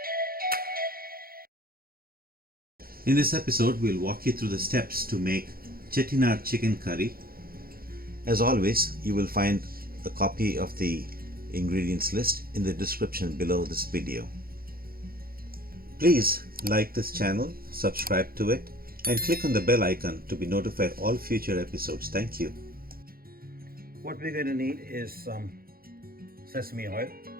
In this episode, we'll walk you through the steps to make Chettinad chicken curry. As always, you will find a copy of the ingredients list in the description below this video. Please like this channel, subscribe to it, and click on the bell icon to be notified all future episodes. Thank you. What we're going to need is some sesame oil,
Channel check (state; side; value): late; left; 0.43 ms